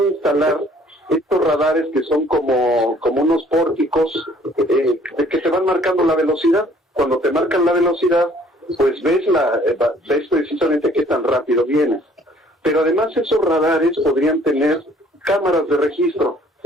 instalar estos radares que son como unos pórticos que te van marcando la velocidad. Cuando te marcan la velocidad, pues ves precisamente qué tan rápido vienes. Pero además esos radares podrían tener cámaras de registro.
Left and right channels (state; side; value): normal; both; correlation 0.58